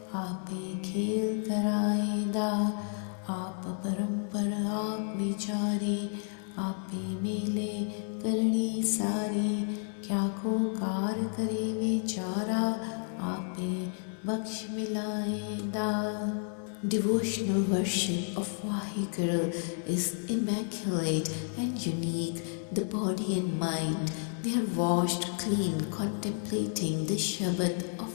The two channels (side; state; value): right; silent; 57 dB below the other